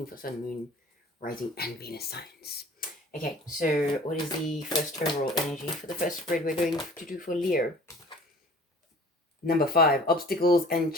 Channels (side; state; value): both; normal; correlation 0.47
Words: for Sun, Moon, Rising and Venus signs. Okay, so what is the first overall energy for the first spread we're going to do for Leo? Number 5, obstacles and